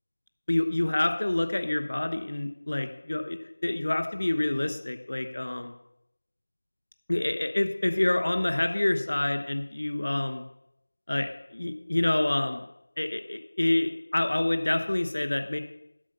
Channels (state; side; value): inverted; both; correlation -1.00